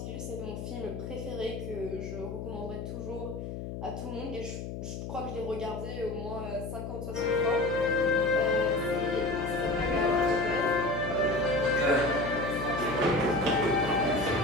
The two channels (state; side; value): noise; left; hum, 7 dB below the sound